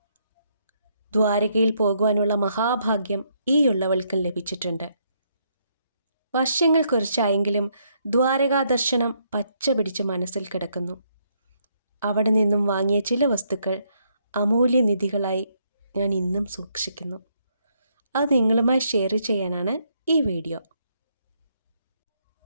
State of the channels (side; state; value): both; inverted; correlation -0.74